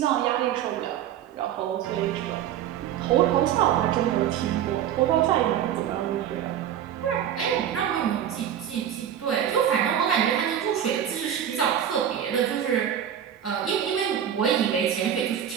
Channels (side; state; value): left; quieter; 9.9 dB